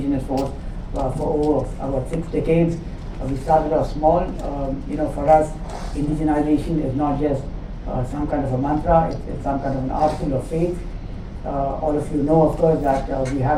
force for over about 6 decades. We started off small. For us, indigenization is not just some kind of a mantra, it's some kind of an article of faith. All of you know, of course, that we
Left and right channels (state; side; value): identical; both; correlation 1.00